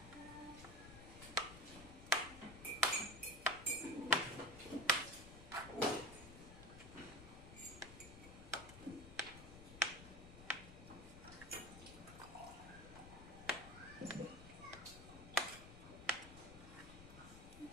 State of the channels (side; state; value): left; noise; rumble, 14 dB below the sound